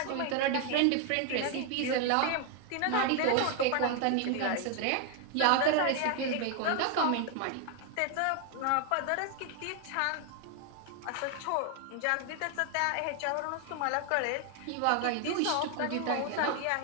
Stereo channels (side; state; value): both; different; correlation 0.00